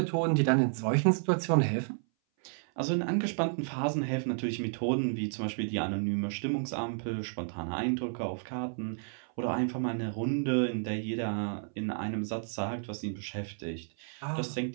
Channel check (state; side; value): silent; left; 57 dB below the other